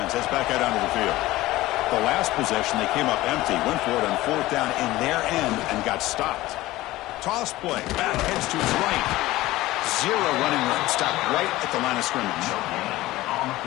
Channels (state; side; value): quieter; right; 17.5 dB